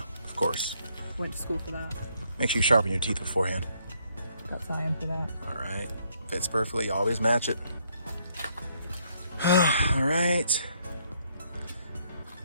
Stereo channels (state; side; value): inverted; both; correlation -0.70